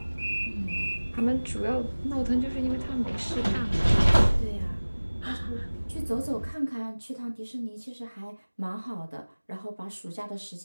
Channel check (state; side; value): inverted; both; correlation -1.00